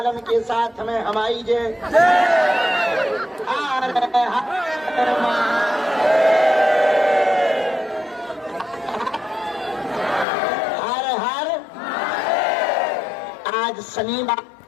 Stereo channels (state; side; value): drops out; right; at 10.2 s